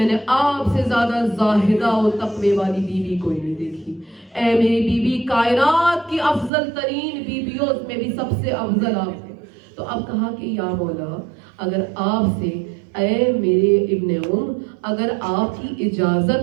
نے آپ سے زیادہ زاہدہ و تقوی والی بیوی کوئی نہیں دیکھی، اے میری بیوی کائنات کی افضل ترین بیویوں میں بھی سب سے افضل آپ ہیں۔ تو اب کہا کہ یا مولا اگر آپ سے، اے میرے ابن اگر آپ کی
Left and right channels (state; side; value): drops out; left; at 6.5 s